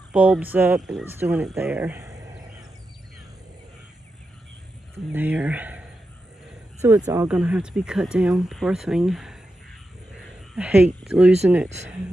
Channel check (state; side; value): normal; both; correlation 0.89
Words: bulbs up, and it's doing it there. And there. So it's all gonna have to be cut down. Poor thing. I hate losing it.